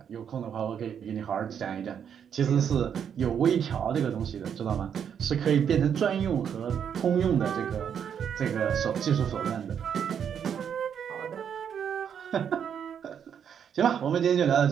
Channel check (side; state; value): left; quieter; 8.1 dB